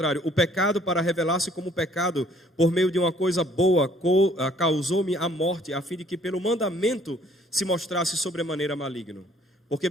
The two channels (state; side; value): normal; both; correlation 0.60